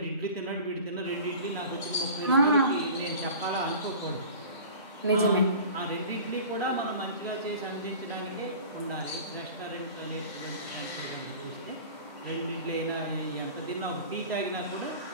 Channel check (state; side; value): inverted; both; correlation -0.40